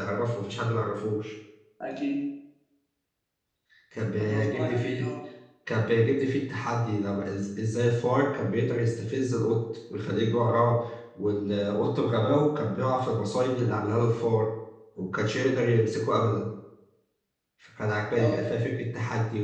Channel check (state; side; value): identical; both; correlation 1.00